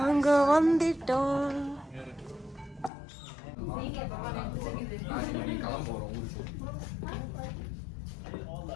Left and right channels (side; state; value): right; drops out; at 2.9 s